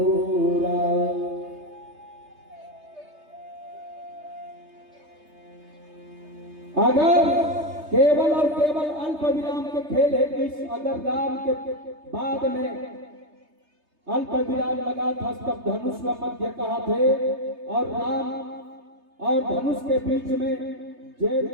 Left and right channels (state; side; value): late; left; 3.3 ms